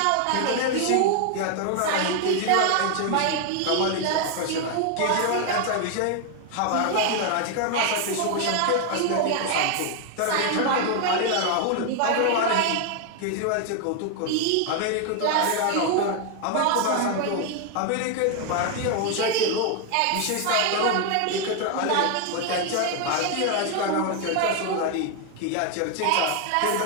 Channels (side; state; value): both; different; correlation 0.01